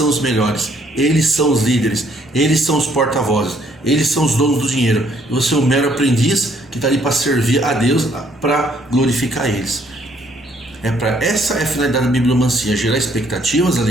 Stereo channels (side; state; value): both; normal; correlation 0.65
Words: os melhores. Eles são os líderes. Eles são os porta-vozes. Eles são os donos do dinheiro. E você é um mero aprendiz que está ali para servir a Deus, para glorificar eles. Essa é a finalidade da bibliomancia: gerar expectativas,